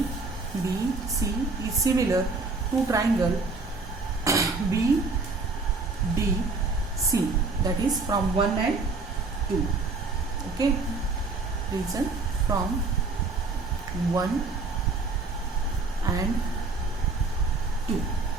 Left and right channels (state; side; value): quieter; left; 3.8 dB